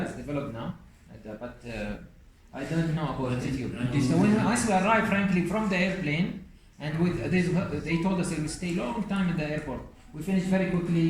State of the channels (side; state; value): both; identical; correlation 1.00